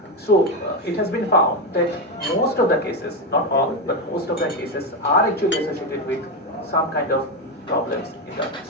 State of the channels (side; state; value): both; normal; correlation 0.10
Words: So it has been found that most of the cases, not all, but most of the cases are actually associated with some kind of problems in the